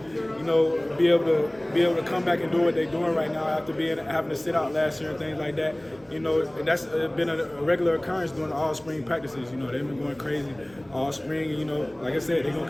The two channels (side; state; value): right; noise; rumble, 27 dB below the sound